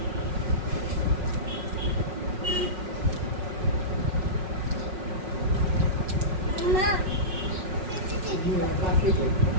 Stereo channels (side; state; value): left; late; 5.5 ms